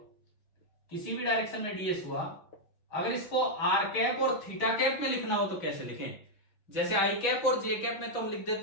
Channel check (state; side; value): late; right; 6.1 ms